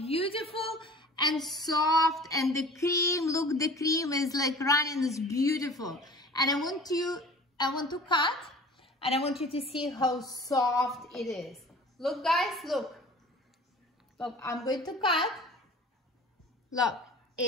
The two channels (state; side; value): normal; both; correlation 0.43